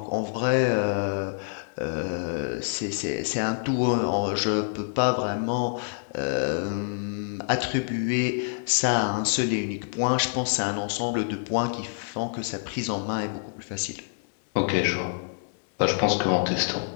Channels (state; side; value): silent; right; digital silence